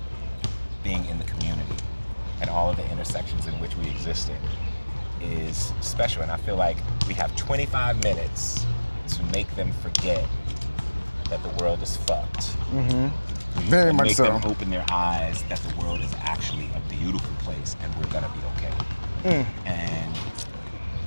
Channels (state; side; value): inverted; both; correlation -1.00